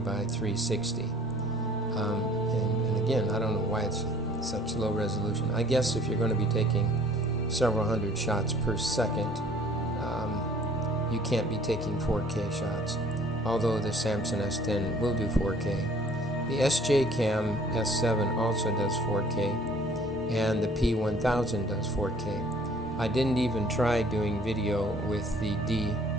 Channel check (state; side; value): normal; both; correlation 0.55